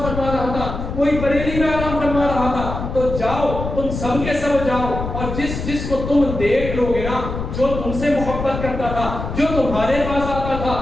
رہا تھا، کوئی بریلی میں آرام فرما رہا تھا۔ تو جاؤ تم سب کے سب جاؤ، اور جس کو تم دیکھ لو گے نا، جو تم سے محبت کرتا تھا، جو تمہارے پاس آتا تھا،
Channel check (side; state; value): left; noise; rumble, 6 dB below the sound